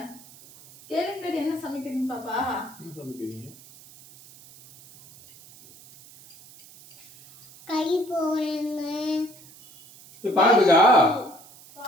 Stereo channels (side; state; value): right; noise; hiss, 22 dB below the sound